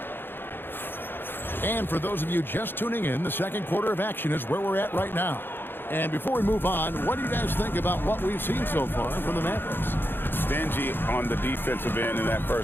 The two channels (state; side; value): late; right; 0.10 ms